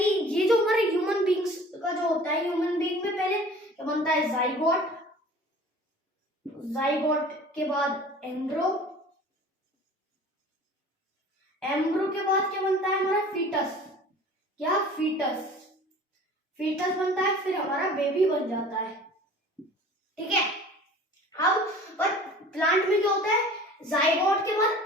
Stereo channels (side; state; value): both; normal; correlation 0.45